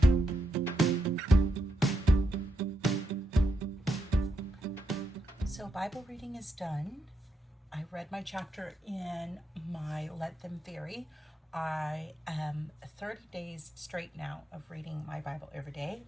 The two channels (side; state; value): both; normal; correlation 0.82